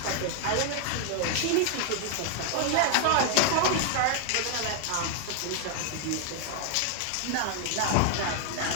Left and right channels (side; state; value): both; different; correlation 0.00